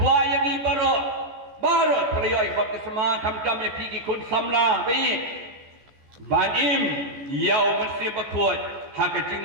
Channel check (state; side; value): late; left; 14 ms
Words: yang ni baru. Baru pelayan baptisma kam-kam yang pergi kun samlah bayi banim yau mesti berkut hak